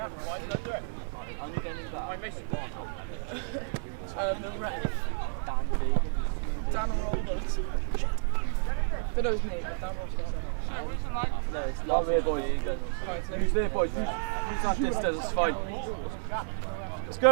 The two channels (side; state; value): left; silent; digital silence